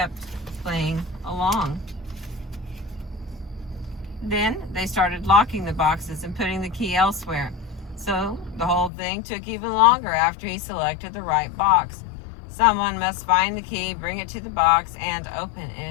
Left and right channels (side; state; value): right; drops out; at 8.9 s